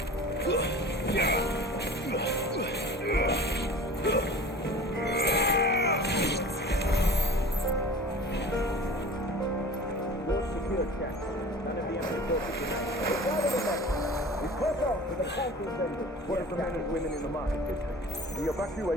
What of the men and women in the market district? The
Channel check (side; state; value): both; normal; correlation 0.40